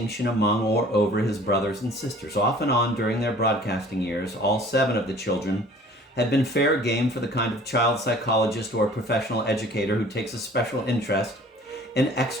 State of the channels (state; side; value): normal; both; correlation 0.50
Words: among or over his brothers and sisters. Off and on during their broadcasting years, all 7 of the children had been fair game for the kind of child psychologist or professional educator who takes a special interest in